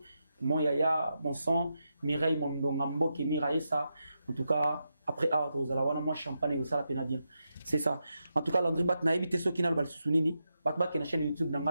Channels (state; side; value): inverted; both; correlation -0.86